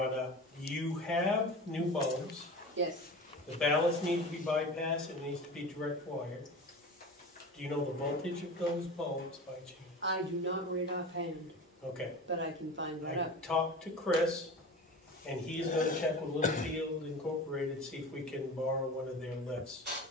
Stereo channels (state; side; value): normal; both; correlation 0.33